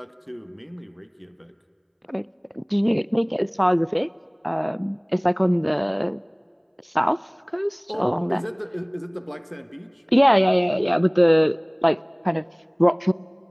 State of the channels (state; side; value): identical; both; correlation 1.00